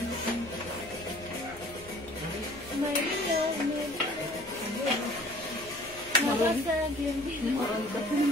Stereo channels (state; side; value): noise; left; hum, 20 dB below the sound